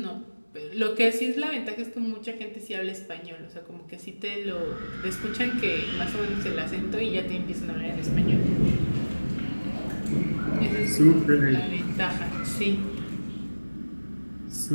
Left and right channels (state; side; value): inverted; both; correlation -1.00